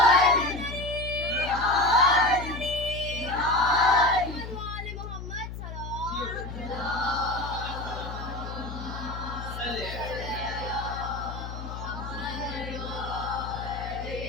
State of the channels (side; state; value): left; noise; hum, 8 dB below the sound